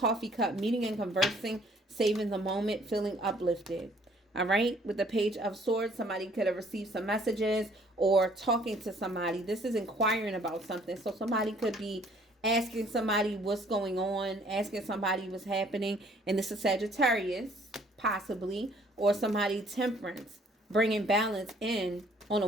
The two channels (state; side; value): normal; both; correlation 0.60